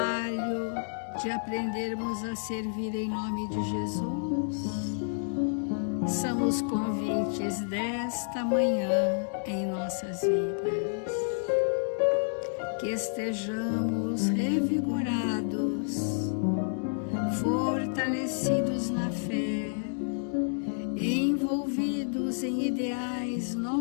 de aprendermos a servir em nome de Jesus. São os convites desta manhã em nossas vidas. Que estejamos revigorados, fortalecidos na fé, envolvidos em ideais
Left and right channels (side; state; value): right; silent; 58 dB below the other